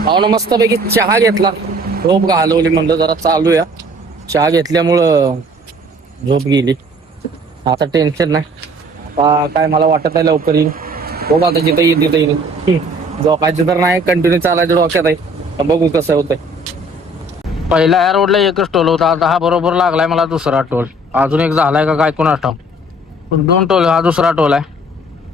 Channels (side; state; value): both; normal; correlation 0.54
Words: पाहुणं मस्तपैकी चहा घेतला. झोप घालवली. म्हणलं जरा चालूया. चहा घेतल्यामुळं झोप गेली. आता टेन्शन नाही. आता काय मला वाटत आहे लवकर येईल. बघू आता जिथं येईल तिथं येईल. झोपायचं तर नाही. कंटिन्यू चालायचं डोक्यात आहे. बघू कसं होतंय. पहिला या रोडला एकच टोल होता. आता हा बरोबर लागलाय मला दुसरा टोल. अजून एक झालाय का काय कोण आठव. 2 टोल. हा दुसरा टोल आहे.